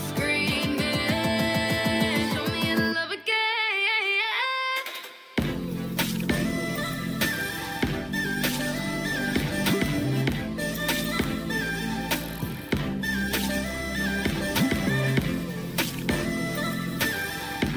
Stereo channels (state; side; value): identical; both; correlation 1.00